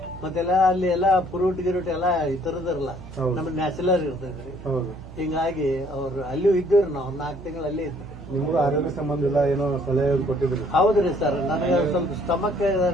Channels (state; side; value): noise; right; hum, 15 dB below the sound